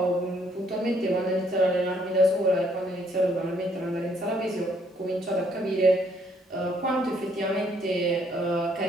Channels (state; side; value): normal; both; correlation 0.67